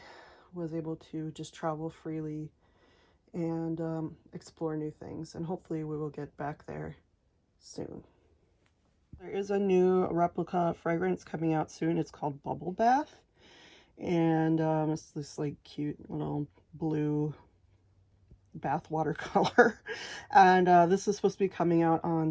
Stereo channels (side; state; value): both; identical; correlation 1.00